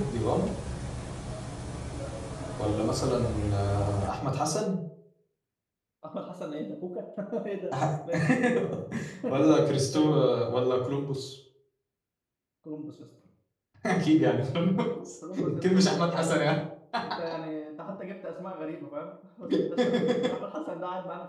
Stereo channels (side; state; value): both; identical; correlation 1.00